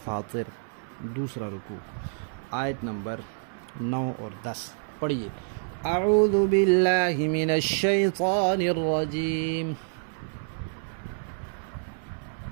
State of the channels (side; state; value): left; silent; 59 dB below the other